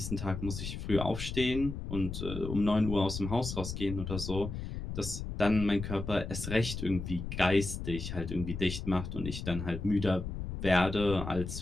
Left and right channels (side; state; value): left; noise; rumble, 6 dB below the sound